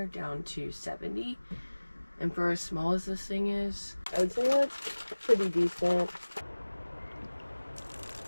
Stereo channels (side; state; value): both; inverted; correlation -1.00